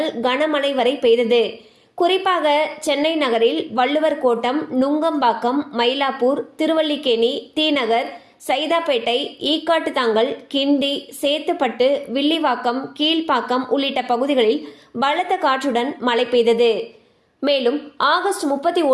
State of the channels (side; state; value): both; identical; correlation 1.00